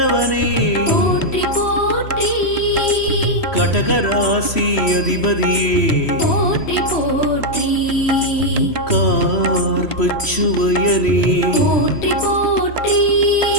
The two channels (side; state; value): right; late; 3.1 ms